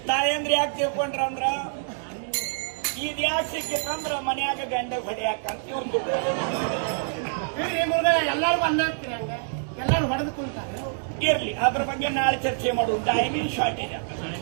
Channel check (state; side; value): silent; left; digital silence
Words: ತಾಯಂದ್ರಿ ಯಾಕೆ ತಿಳ್ಕೊಂಡ್ರಂದ್ರ, ಇದ್ ಯಾಕೆ ಸಿಕ್ಕಿತ್ತಂದ್ರ ಮನ್ಯಾಗ ಗಂಡ ಹೊಡೆಯಾಕಂತ ಒಂದು ಎಲ್ಲರೂ ಹೊಡೆದು ಕುಂತಾರೆ. ಇರ್ಲಿ, ಅದ್ರ ಬಗ್ಗೆ ನಾಳೆ ಚರ್ಚೆ ಮಾಡುದು. Timing shortage.